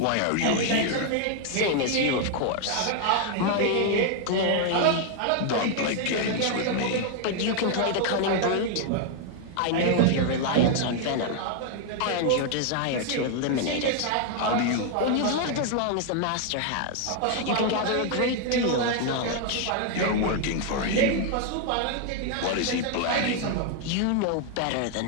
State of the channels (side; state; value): both; different; correlation 0.00